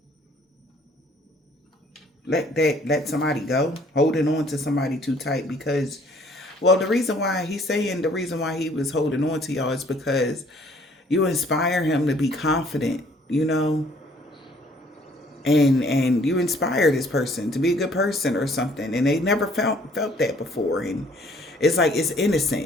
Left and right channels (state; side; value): normal; both; correlation 0.59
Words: Let somebody go. Holding on to somebody too tight because, well, the reason why he was holding on to y'all is because you inspire him to be confident, you know? And you inspire this person to be a good person or something, and they never felt that before, and it's like it's